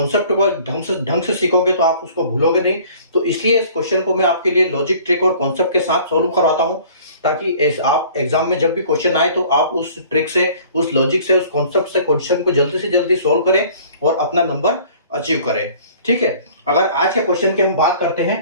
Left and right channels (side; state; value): both; inverted; correlation -0.51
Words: को ढंग से सीखोगे तो आप उसको भूलोगे नहीं। तो इसलिए इस क्वेश्चन को मैं आपके लिए लॉजिक, ट्रिक और कॉन्सेप्ट के साथ सोल्व करवाता हूं, ताकि आप एग्जाम में जब भी क्वेश्चन आए तो आप उस ट्रिक से, उस लॉजिक से, उस कॉन्सेप्ट से क्वेश्चन को जल्दी से जल्दी सोल्व करें और अपना नंबर अचीव करें। ठीक है, अगर आज के क्वेश्चन की हम बात करते